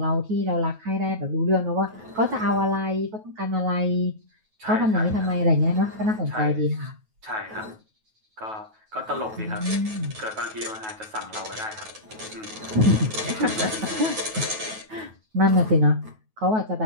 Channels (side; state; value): left; late; 9.3 ms